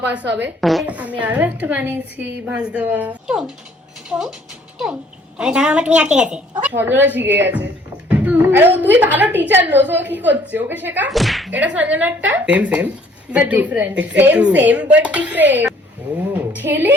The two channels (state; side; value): normal; both; correlation 0.59